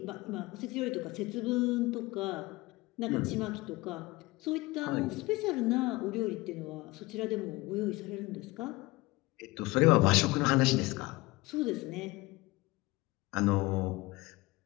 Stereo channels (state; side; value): quieter; right; 21.4 dB